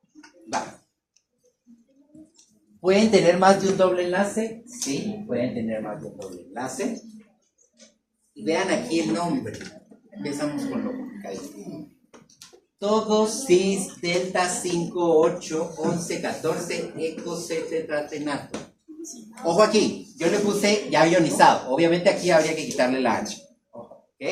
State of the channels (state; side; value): identical; both; correlation 1.00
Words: Va. ¿Pueden tener más de un doble enlace? Sí, pueden tener más de un doble enlace. Y vean aquí el nombre. Empezamos con lo complicado. Todos cis, delta 5, 8, 11, 14, eco, C, tetratenato. Ojo aquí, yo le puse ya ionizado. Obviamente aquí habría que quitarle la H.